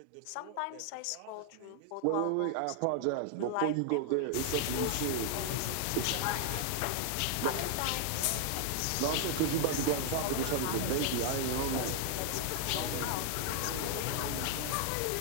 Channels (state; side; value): different; both; correlation 0.00